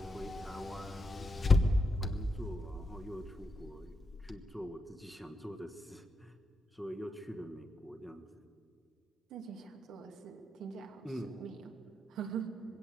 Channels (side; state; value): both; normal; correlation 0.82